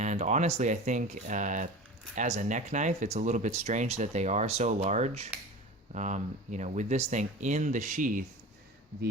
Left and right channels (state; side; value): normal; both; correlation 0.34